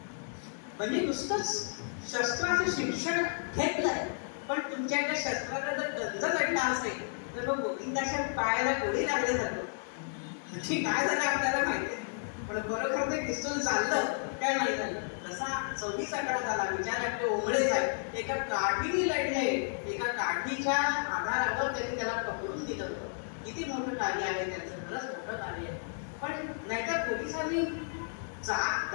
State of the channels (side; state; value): right; silent; digital silence